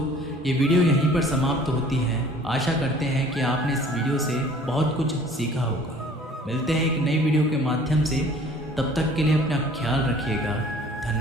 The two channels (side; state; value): both; normal; correlation 0.51